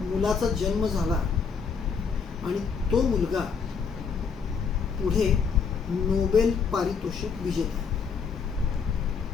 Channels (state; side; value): quieter; right; 5.8 dB